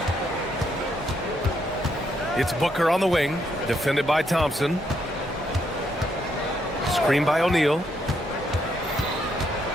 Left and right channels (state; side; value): normal; both; correlation 0.75